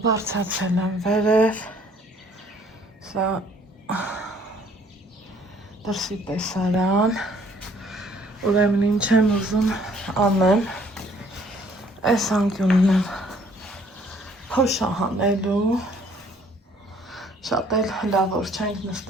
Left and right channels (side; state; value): both; normal; correlation 0.60